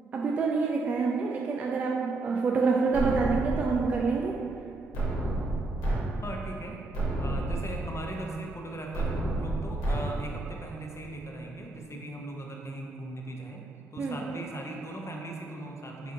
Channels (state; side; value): quieter; left; 3.2 dB